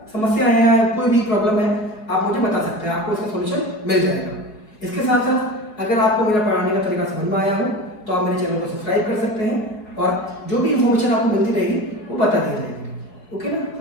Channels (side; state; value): right; late; 4.8 ms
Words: समस्या है या कोई भी प्रॉब्लम है आप मुझे बता सकते हैं, आपको इसका सोल्यूशन मिल जाएगा। इसके साथ साथ अगर आपको मेरा पढ़ाने का तरीका समझ में आया हो तो आप मेरे चैनल को सब्सक्राइब कर सकते हैं और जो भी इन्फॉर्मेशन आपको मिलती रहेगी वो बता दी जाएगी। ओके ना